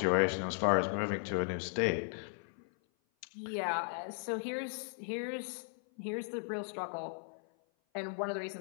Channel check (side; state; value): right; silent; 53 dB below the other